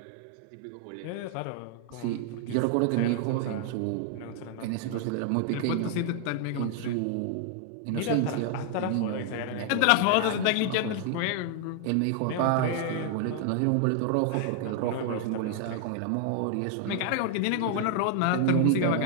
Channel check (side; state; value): both; different; correlation 0.00